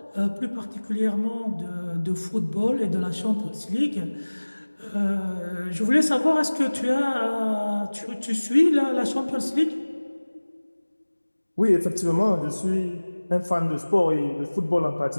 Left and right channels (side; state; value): both; inverted; correlation -1.00